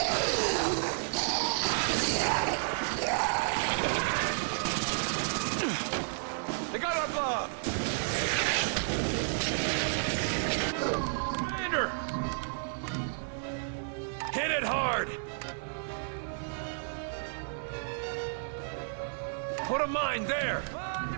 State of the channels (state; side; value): silent; left; digital silence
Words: They got our bomb! Commander! Hit it hard! Put a mine there! Mine